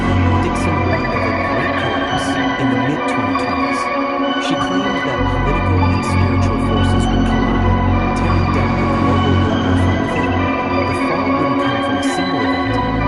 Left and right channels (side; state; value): both; identical; correlation 1.00